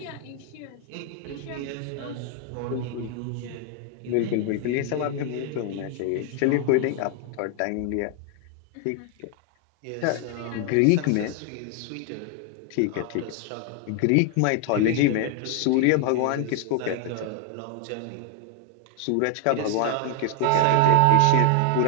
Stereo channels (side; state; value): both; different; correlation 0.00